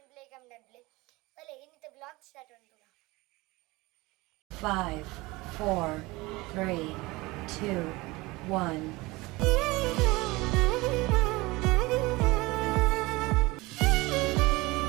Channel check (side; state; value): left; quieter; 22.1 dB